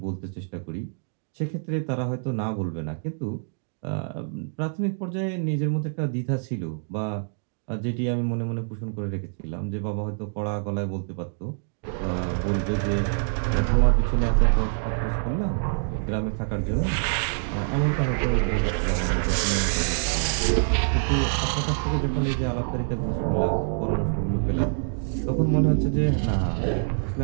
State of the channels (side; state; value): left; silent; digital silence